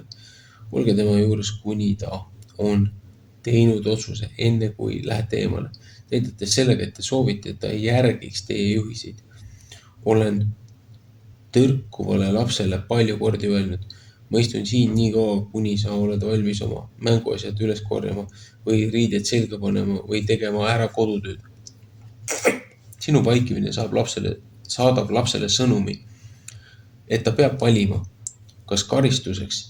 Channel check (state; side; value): identical; both; correlation 1.00